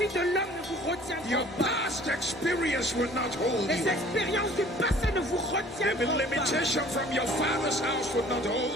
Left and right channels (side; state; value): both; normal; correlation 0.52